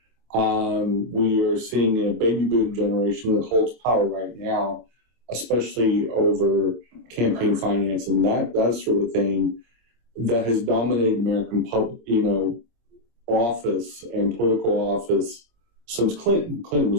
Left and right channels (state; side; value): late; left; 26 ms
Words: We are seeing a baby boom generation that holds power right now, especially over campaign finance and that sort of thing, that has dominated American office and political office since Clinton. Clinton